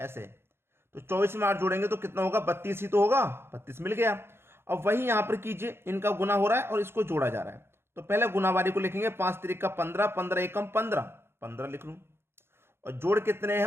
तो 24 में 8 जोड़ेंगे तो कितना होगा, 32 ही तो होगा, 32 मिल गया। अब वही यहां पर कीजिए, इनका गुना हो रहा है और इसको जोड़ा जा रहा है। तो पहले गुनावारी को लिखेंगे, 5 त्रिक का 15, 15 एकम 15, 15 लिख लूं। और जोड़ कितने हैं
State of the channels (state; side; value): late; left; 0.12 ms